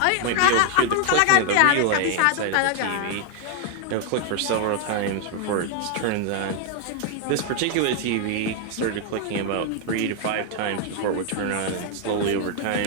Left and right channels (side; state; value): both; different; correlation 0.00